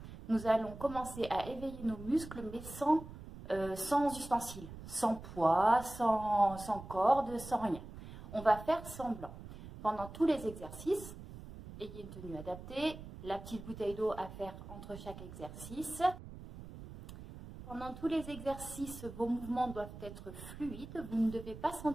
Nous allons commencer à éveiller nos muscles, mais sans ustensiles, sans poids, sans corde, sans rien. On va faire semblant. Pendant tous les exercices, ayez une tenue adaptée, la petite bouteille d'eau à faire entre chaque exercice. Pendant tous les exercices, vos mouvements doivent être fluides. Vous ne devez pas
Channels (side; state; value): right; noise; rumble, 13 dB below the sound